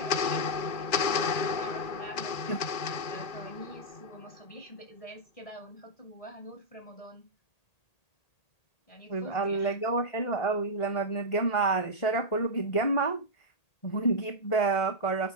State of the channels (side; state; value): right; late; 1.8 ms